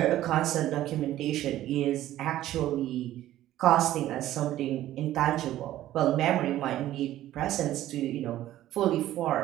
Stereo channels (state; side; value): quieter; left; 13.8 dB